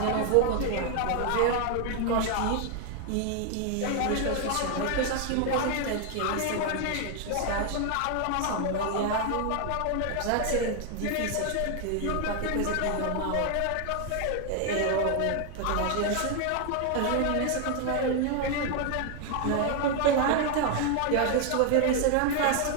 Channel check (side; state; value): both; different; correlation 0.00